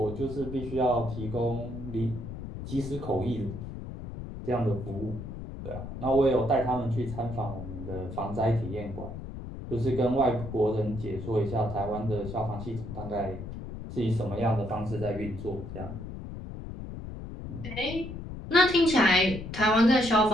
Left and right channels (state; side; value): noise; left; rumble, 9 dB below the sound